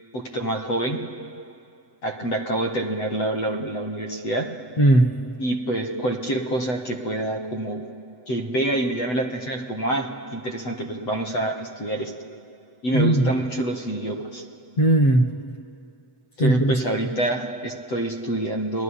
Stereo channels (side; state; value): right; late; 8.0 ms